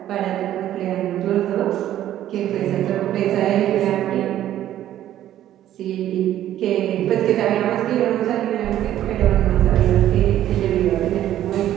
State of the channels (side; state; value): left; quieter; 12.3 dB